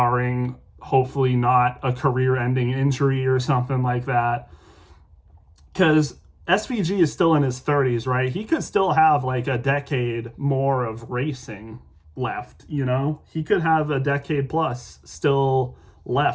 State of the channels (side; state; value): both; identical; correlation 1.00